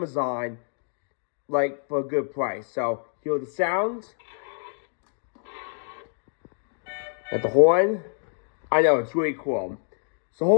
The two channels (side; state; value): right; silent; digital silence